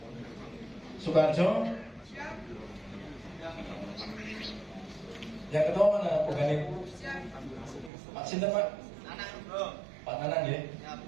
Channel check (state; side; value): drops out; left; at 7.9 s